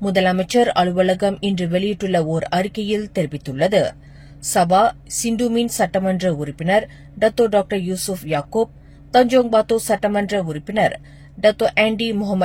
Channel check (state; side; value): identical; both; correlation 1.00